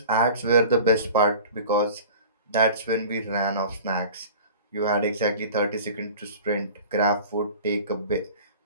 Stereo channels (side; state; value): both; inverted; correlation -0.41